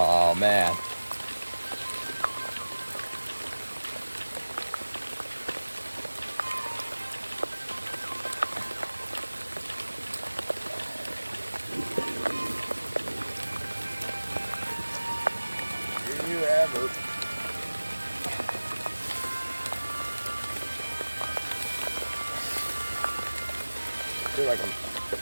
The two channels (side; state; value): both; inverted; correlation -1.00